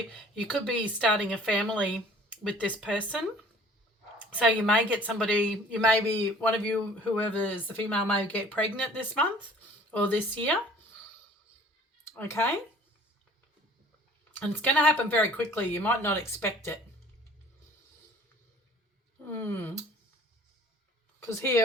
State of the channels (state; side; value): normal; both; correlation 0.51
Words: you could be starting a family with this person. So you may get somebody, you may be, one of you, whoever is the female, may get pregnant this month or this year. Okay. And it's going to happen very quickly. You might not expect it. Because